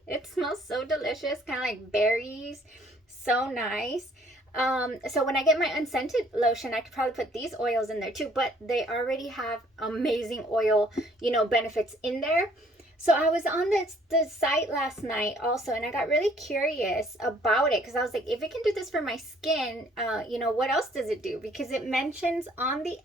It smells so delicious, kind of like berries. So nice. So when I get my unscented lotion, I could probably put these oils in there too, but they already have amazing oil, you know, benefits in there. So I was on the site last night also, and I got really curious about it because I was like, if it can do this for my skin, you know, what else does it do? Because it mentions on the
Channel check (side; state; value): both; normal; correlation 0.61